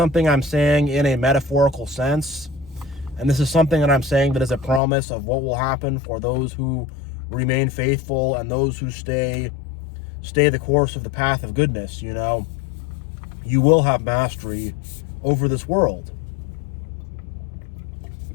I'm saying in a metaphorical sense. And this is something that I'm saying that is a promise of what will happen for those who remain faithful and those who stay the course of the path of goodness. You will have mastery over this world.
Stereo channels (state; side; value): drops out; right; at 4.8 s